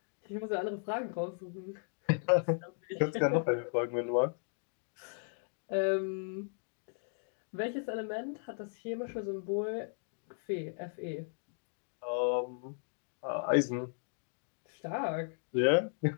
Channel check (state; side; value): silent; right; 54 dB below the other